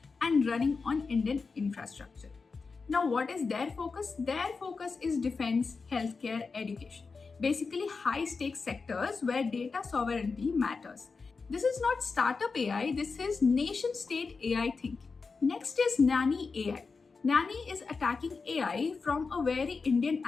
and running on Indian infrastructure. Now, what is their focus? Their focus is defense, healthcare, education. Basically, high stakes sectors where data sovereignty matters. This is not startup AI, this is nation state AI thinking. Next is Nani AI. Nani is attacking AI from a very Indian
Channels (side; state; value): right; quieter; 4.6 dB